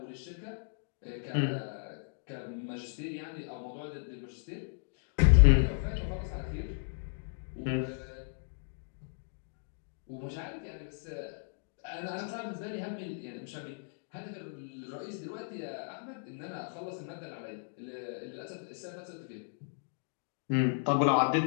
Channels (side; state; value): right; silent; digital silence